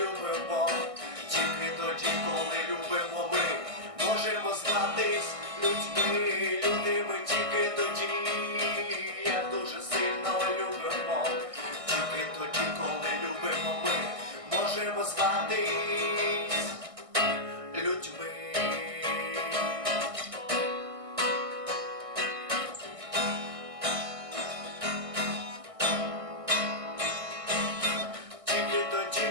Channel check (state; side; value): late; left; 1.6 ms